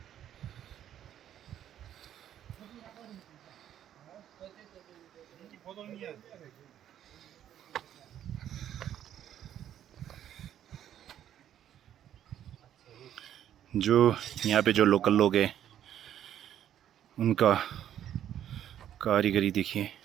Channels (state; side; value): quieter; left; 10.7 dB